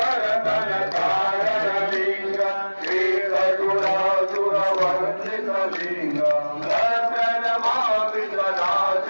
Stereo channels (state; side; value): inverted; both; correlation -1.00